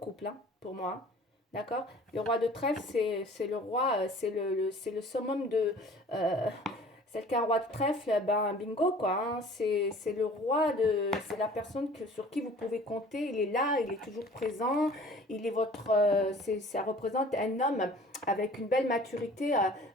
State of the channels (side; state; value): both; normal; correlation 0.48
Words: hein, pour moi. D'accord. Le roi de trèfle, c'est le roi, c'est le summum de... celle qui a un roi de trèfle, ben bingo quoi. Hein. C'est le roi de... C'est la personne sur qui vous pouvez compter. Il est là, il est toujours présent. Il est votre... ça représente un homme avec une belle maturité,